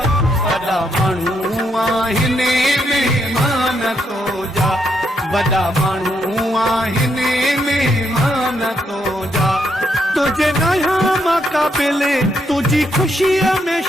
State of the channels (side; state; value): both; normal; correlation 0.77